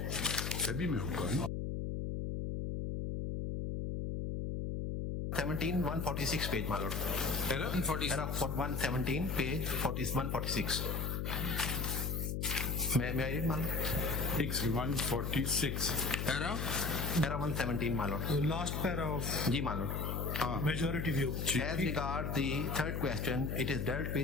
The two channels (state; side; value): noise; left; hum, 2 dB below the sound